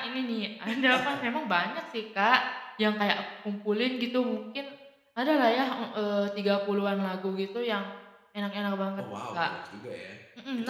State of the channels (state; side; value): identical; both; correlation 1.00